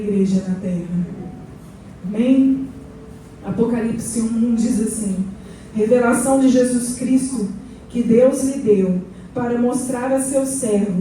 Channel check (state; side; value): identical; both; correlation 1.00